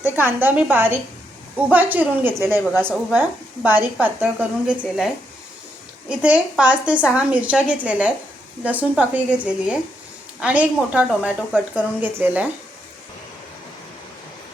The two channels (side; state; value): both; normal; correlation 0.79